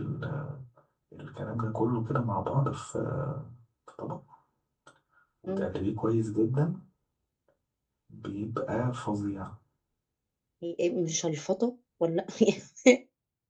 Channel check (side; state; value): both; identical; correlation 1.00